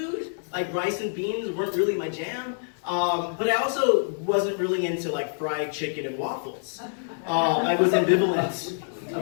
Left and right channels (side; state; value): right; silent; digital silence